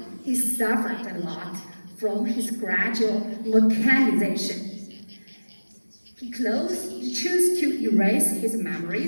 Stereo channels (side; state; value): both; inverted; correlation -1.00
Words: he suffered a lot from his gradual mechanization. He chose to erase his